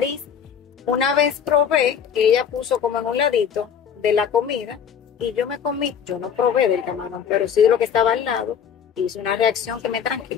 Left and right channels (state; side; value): quieter; right; 7.7 dB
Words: Una vez probé que ella puso como en un ladito de la comida y yo me comí, yo no probé del camarón, pero sí de lo que estaba al lado, hice una reacción que me